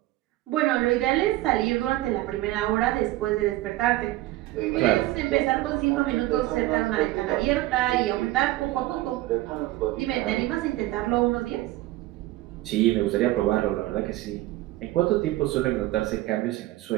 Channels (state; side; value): quieter; left; 17.1 dB